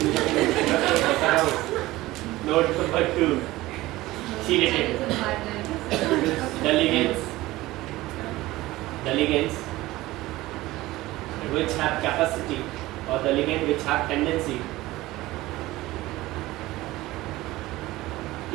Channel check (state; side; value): quieter; left; 18.1 dB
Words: note number 2 chelated the ligands which have capacity or the ligand which have tendency